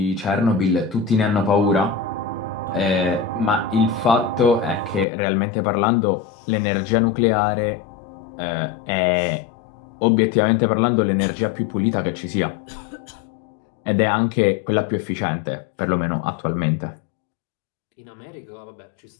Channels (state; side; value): drops out; right; at 5.1 s